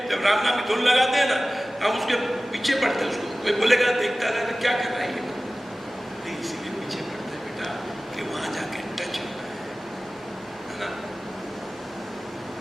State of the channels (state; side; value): normal; both; correlation 0.97